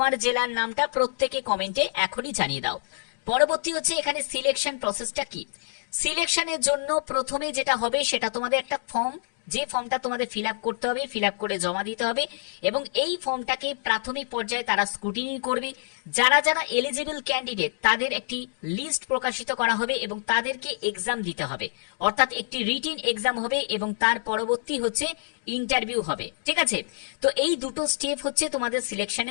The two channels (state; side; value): silent; right; digital silence